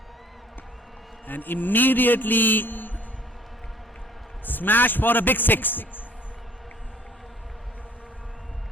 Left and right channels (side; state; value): both; normal; correlation 0.56